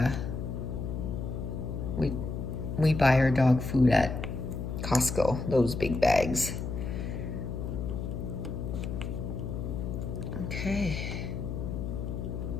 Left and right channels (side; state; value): left; noise; hum, 4 dB below the sound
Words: buy our dog food at Costco, those big bags. Okay,